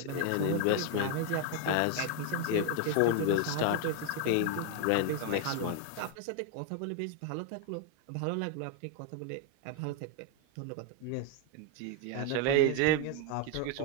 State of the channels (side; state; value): both; different; correlation 0.00